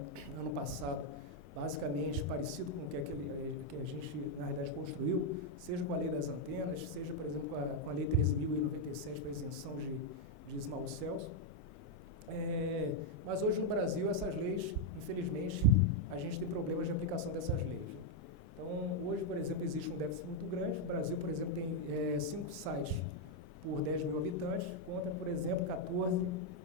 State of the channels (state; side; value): normal; both; correlation 0.00